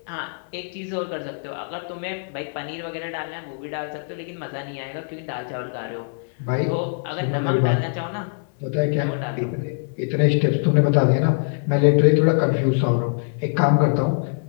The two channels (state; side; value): silent; right; 61 dB below the other